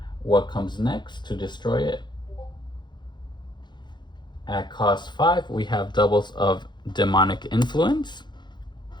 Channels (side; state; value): right; late; 0.22 ms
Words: what comes next to destroy it. At cost 5, we have doubles of Demonic Influence